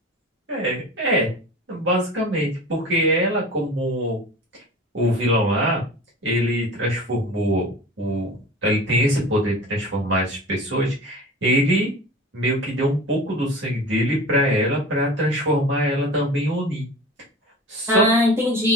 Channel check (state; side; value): normal; both; correlation 0.37